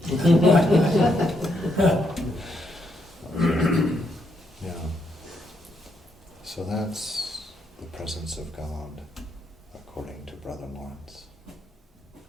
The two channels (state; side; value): normal; both; correlation 0.77